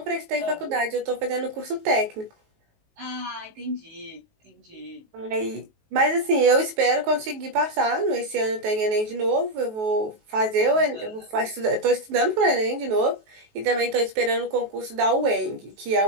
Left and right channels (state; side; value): late; left; 19 ms